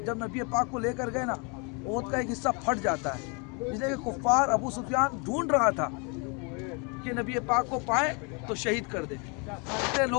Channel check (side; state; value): right; quieter; 33.3 dB